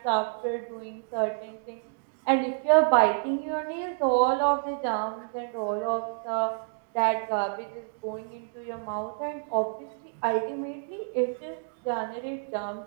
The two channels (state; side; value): silent; left; digital silence